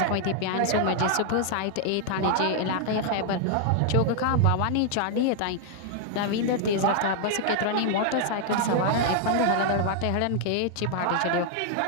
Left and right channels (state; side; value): different; both; correlation 0.00